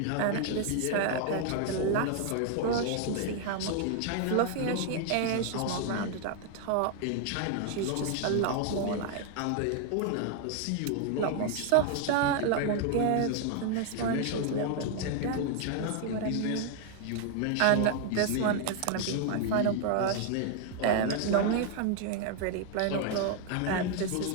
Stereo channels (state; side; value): different; both; correlation 0.00